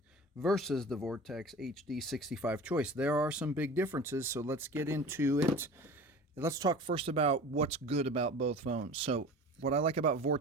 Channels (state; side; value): normal; both; correlation 0.38